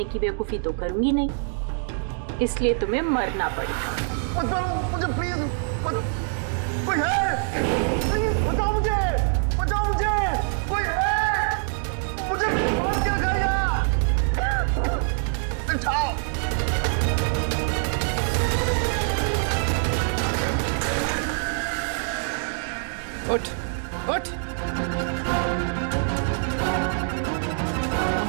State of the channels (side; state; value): left; silent; 62 dB below the other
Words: की बेवकूफ़ी तो करूंगी नहीं, इसलिए तुम्हें मरना पड़ेगा। मत मारो मुझे प्लीज, मत। कोई है? प्लीज बचाओ मुझे, बचाओ मुझे, कोई है? मुझे बांध के रखा यहाँ। उठाओ। उठ, उठ।